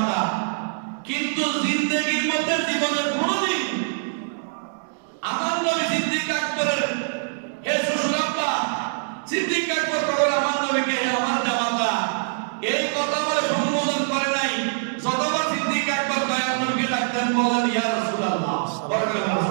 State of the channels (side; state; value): left; silent; digital silence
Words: কিন্তু জিন্দেগীর মধ্যে জীবনের কোনদিন আমার নবী সিদ্দিক আকবরের হে শ্বশুর আব্বা, সিদ্দিক আকবর বলে আমার নবীকে আমার জামাতা, এই কথা বলে সম্বোধন করে নাই। যতবার সিদ্দিক আকবর দয়াল নবীকে ডাকতেন বলেন, ইয়া রাসূলুল্লাহ।